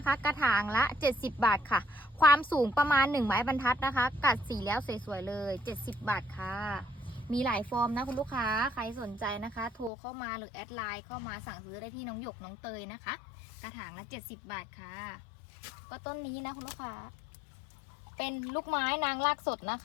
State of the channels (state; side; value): drops out; right; at 9.9 s